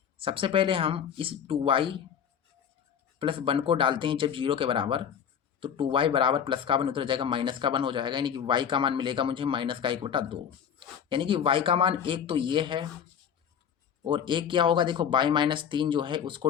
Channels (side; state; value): right; quieter; 8.2 dB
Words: सबसे पहले हम इस 2y + 1 को डालते हैं जब 0 के बराबर, तो 2y बराबर प्लस का 1 उतर जाएगा, माइनस का 1 हो जाएगा, यानी कि y का मान मिलेगा मुझे -1/2, यानी कि y का मान 1 तो ये है, और एक क्या होगा देखो y-3 जो है उसको